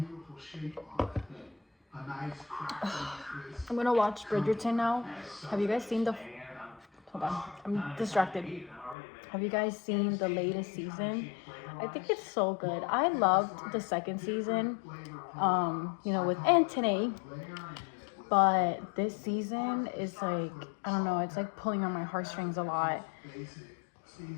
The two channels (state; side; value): drops out; right; at 9.0 s